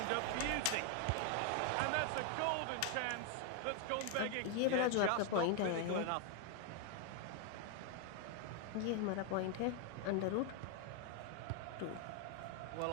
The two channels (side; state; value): both; different; correlation 0.01